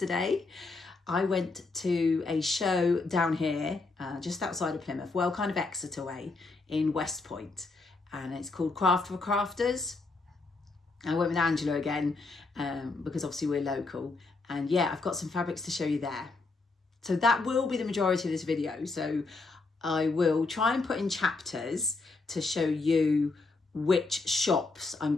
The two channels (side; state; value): right; quieter; 3.7 dB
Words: I went to a show down here, just outside of Plymouth, well, kind of Exeter way, in West Point. And it's called Craft for Crafters. I went with Angela again because obviously we're local, and yeah, I've got some fabrics to show you there. So that will be the majority of this video. So I will try and put in chapters to show you which shops I'm